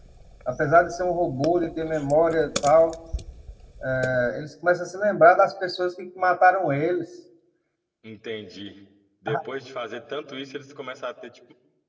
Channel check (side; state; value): both; identical; correlation 1.00